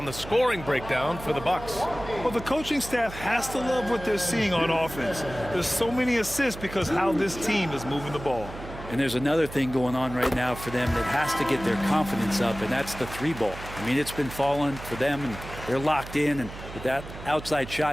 the scoring breakdown for the Bucks. Well, the coaching staff has to love what they're seeing on offense. There's so many assists because how this team is moving the ball. And there's another thing going on right now for them that has to get their confidence up, and that's the three ball. I mean, it's been falling for them, and they're locked in, and with that outside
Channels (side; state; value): right; noise; hum, 13 dB below the sound